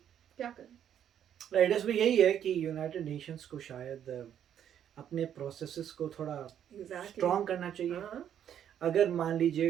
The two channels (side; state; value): left; quieter; 9.7 dB